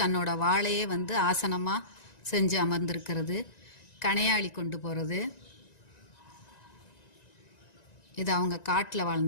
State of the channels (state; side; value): late; right; 1.9 ms